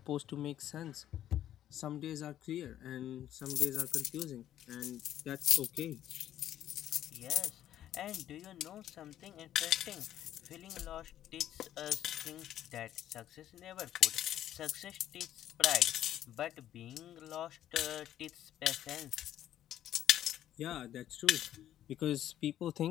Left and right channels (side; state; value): right; quieter; 11.8 dB